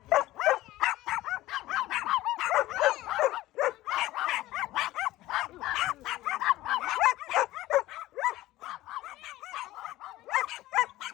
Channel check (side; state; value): right; quieter; 16.6 dB